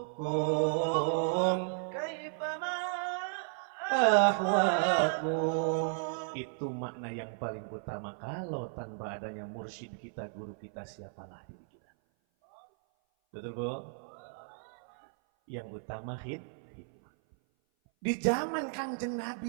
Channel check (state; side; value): silent; left; 55 dB below the other